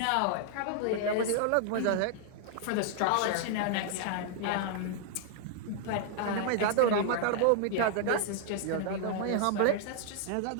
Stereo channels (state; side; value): different; both; correlation -0.01